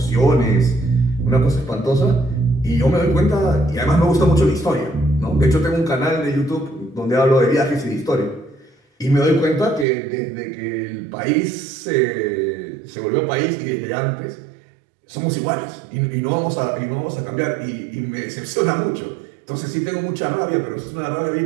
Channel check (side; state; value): left; drops out; at 9.9 s